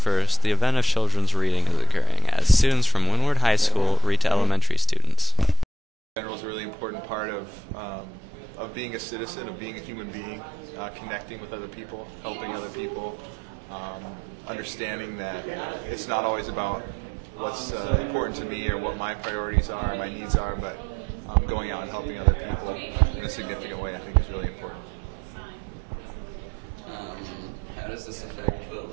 the event of children's reading is occurring as students from Windward High School read to elementary students. General is a really important part of being a citizen, of being a human being, connecting with other people, helping other people, understanding that it's not always about what's important to me or what my priorities are or my needs are, but going out and helping other people in a significant way I think is really important. How does this affect the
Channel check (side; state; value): both; normal; correlation 0.78